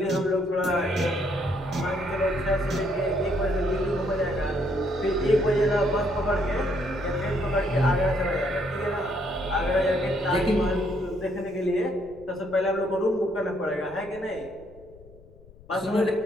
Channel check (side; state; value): left; noise; rumble, 23 dB below the sound